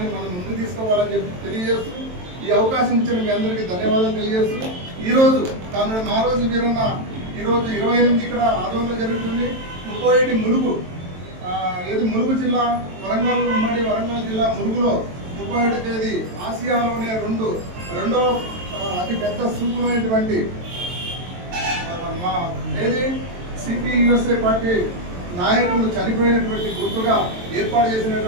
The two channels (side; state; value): left; late; 23 ms